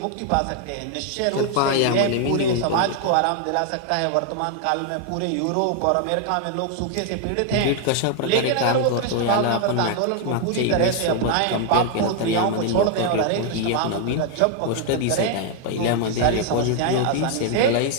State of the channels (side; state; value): both; different; correlation 0.00